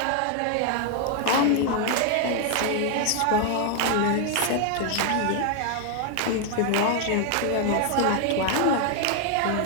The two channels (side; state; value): both; different; correlation 0.00